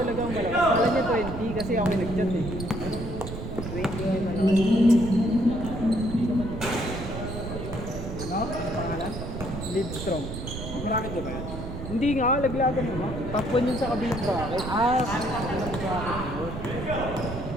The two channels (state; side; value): noise; right; rumble, 7 dB below the sound